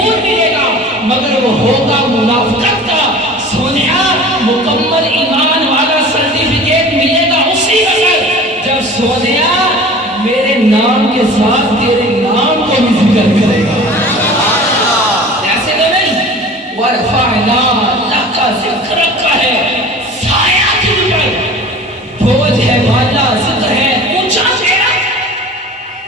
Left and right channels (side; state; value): both; normal; correlation 0.40